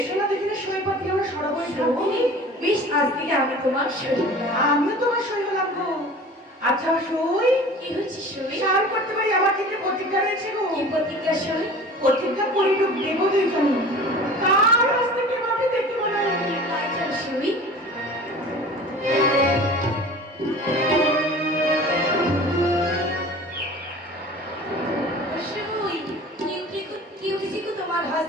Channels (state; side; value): normal; both; correlation 0.41